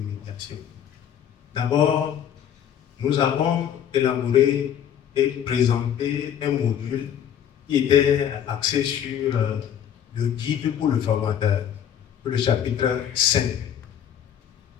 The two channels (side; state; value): right; quieter; 9.4 dB